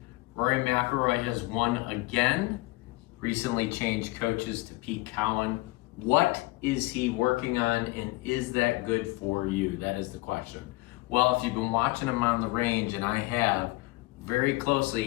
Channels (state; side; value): quieter; right; 22.2 dB